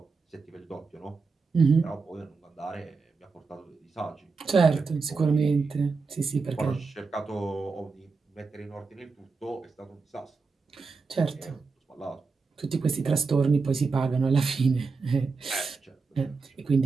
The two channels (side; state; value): left; quieter; 4.5 dB